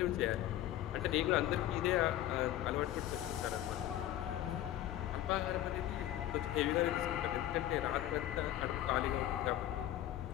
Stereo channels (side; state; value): right; quieter; 13.1 dB